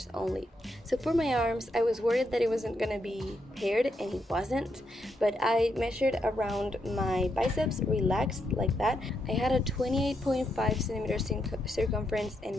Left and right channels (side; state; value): both; normal; correlation 0.80